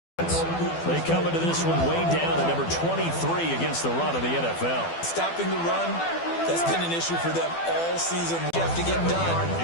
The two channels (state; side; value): late; right; 12 ms